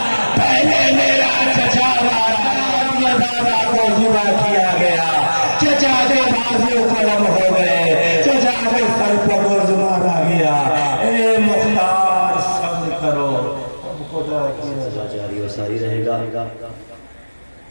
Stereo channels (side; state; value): both; inverted; correlation -1.00